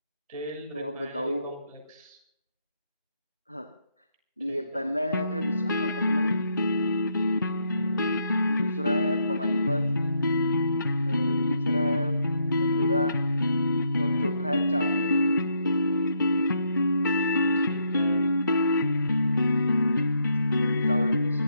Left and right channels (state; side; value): inverted; both; correlation -0.75